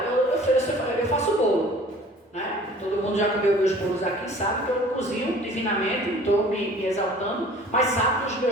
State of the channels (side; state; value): both; normal; correlation 0.48